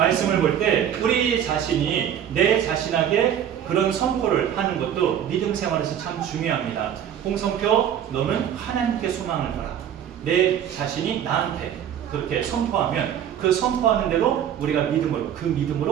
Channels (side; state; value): left; quieter; 9.6 dB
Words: 볼 때 우리 자신이 내 자신에게 그런 선포를 하는 것도 믿음 생활에서 참 중요합니다. 홍성표 너는 하나님께 소망을 둬라. 내 자신이 나한테 그렇게 선포하면 그 선포하는 대로 우리가